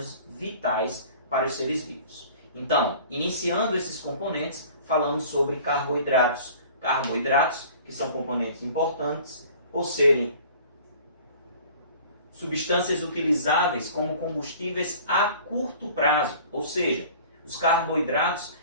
vitais para os seres vivos. Então, iniciando esses componentes, falamos sobre carboidratos. Carboidratos que são componentes importantes por serem substâncias utilizáveis como combustíveis a curto prazo, ou seja, os carboidratos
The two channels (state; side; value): inverted; both; correlation -0.47